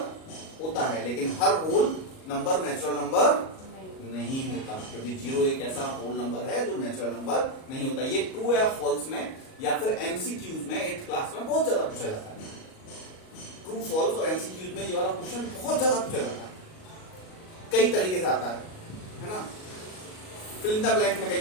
होता है, लेकिन हर होल नंबर नेचुरल नंबर नहीं होता, क्योंकि जीरो एक ऐसा होल नंबर है जो नेचुरल नंबर नहीं होता। ये ट्रू या फॉल्स में या फिर एमसीक्यूज में 8th क्लास में बहुत ज्यादा पूछा जाता है। ट्रू फॉल्स और एमसीक्यूज में ये वाला क्वेश्चन बहुत ज्यादा पूछा जाता है, कई तरीके से आता है ना। फिल इन द ब्लैंक में कई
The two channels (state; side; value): late; right; 38 ms